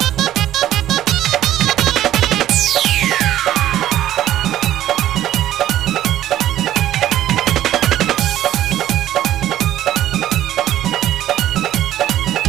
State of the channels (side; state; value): left; quieter; 12.9 dB